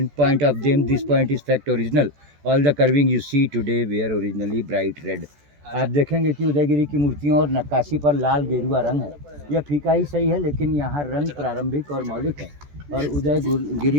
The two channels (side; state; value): left; late; 14 ms